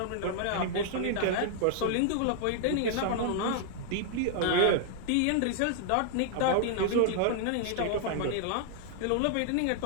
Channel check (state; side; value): different; both; correlation -0.01